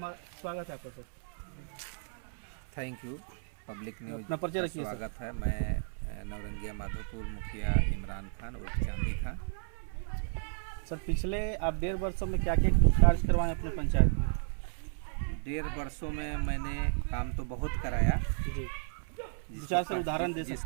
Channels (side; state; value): left; silent; 56 dB below the other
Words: स्वागत है आपका sir. Thank you. Public news अपना परिचय रखिए। स्वागत है। मैं नवरंगिया माधोपुर मुखिया इमरान खान उर्फ चांदी खान। सर पिछले आप 1.5 वर्षों में क्या क्या कार्य करवाएं अपने पंचायत में? 1.5 वर्षों में मैंने काम तो बहुत कराया जी, विचार से उदाहरण दे सकते